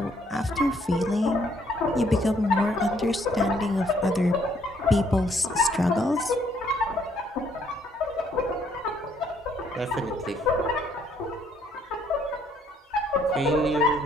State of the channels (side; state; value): both; normal; correlation 0.67